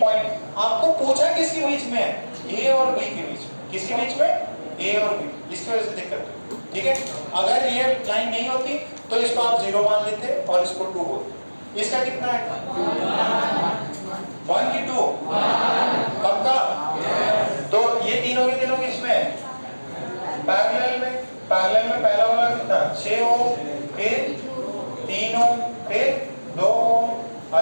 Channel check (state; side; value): inverted; both; correlation -1.00